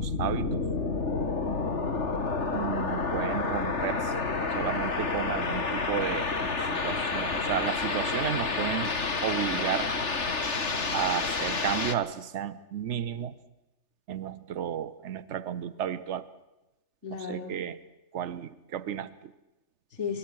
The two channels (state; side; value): late; left; 3.4 ms